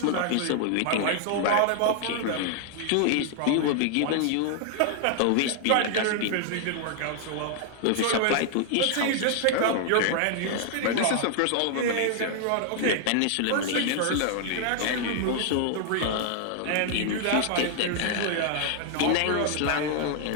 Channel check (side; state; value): both; different; correlation 0.00